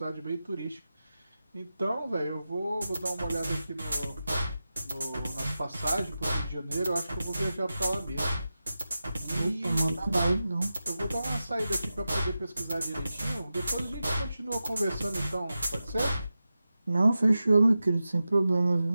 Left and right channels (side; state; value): both; inverted; correlation -0.93